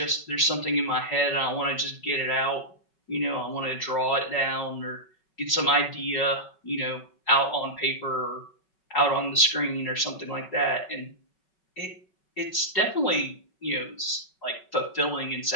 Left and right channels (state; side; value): late; right; 5.3 ms